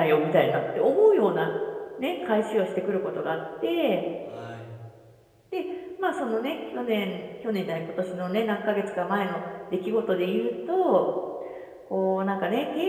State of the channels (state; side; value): identical; both; correlation 1.00